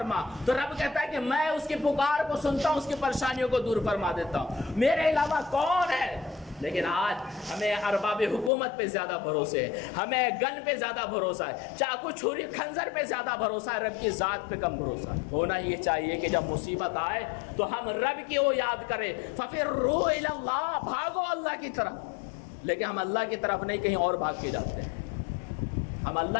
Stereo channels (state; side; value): drops out; right; at 8.5 s